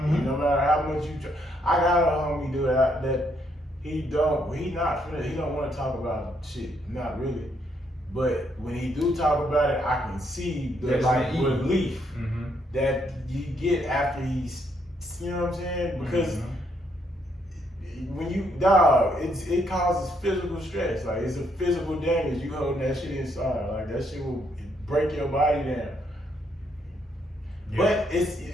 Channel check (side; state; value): both; normal; correlation 0.73